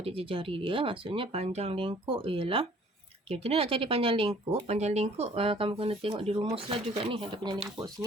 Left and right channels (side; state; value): both; normal; correlation 0.56